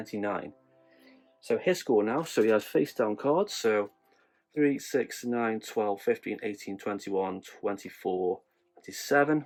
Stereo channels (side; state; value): both; identical; correlation 1.00